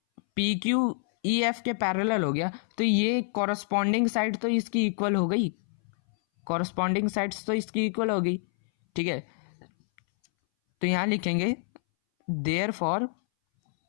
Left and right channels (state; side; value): silent; right; 60 dB below the other